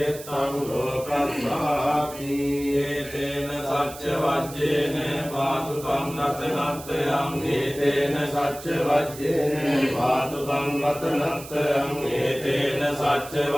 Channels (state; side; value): noise; right; hiss, 15 dB below the sound